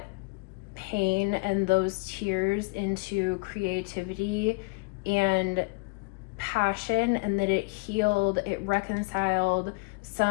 pain and those tears into creativity and passion, and that it healed, it reconciled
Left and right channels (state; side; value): quieter; right; 28.7 dB